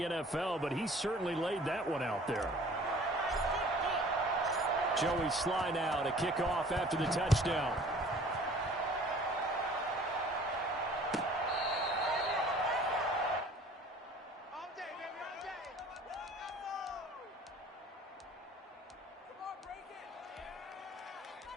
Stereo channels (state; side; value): normal; both; correlation 0.50